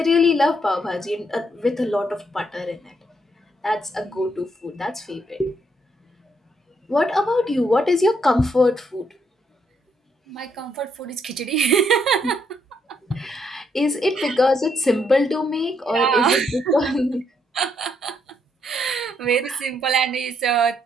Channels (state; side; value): normal; both; correlation 0.74